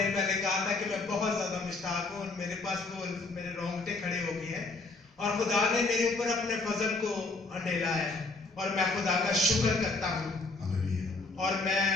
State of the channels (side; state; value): right; quieter; 3.5 dB